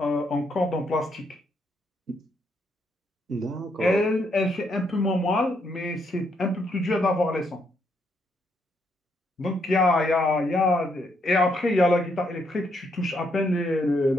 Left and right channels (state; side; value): normal; both; correlation 0.75